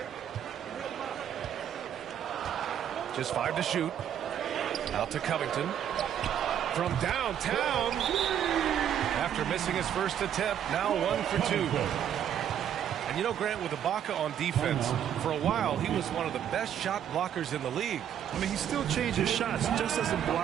Just 5 to shoot. Out to Covington. From downtown. After missing his first attempt, now 1 for 2. And you know, Grant, with Ibaka on defense, for a while he was one of the best shot blockers in the league. I mean, he still changes shots, just doesn't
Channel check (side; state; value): left; quieter; 9.7 dB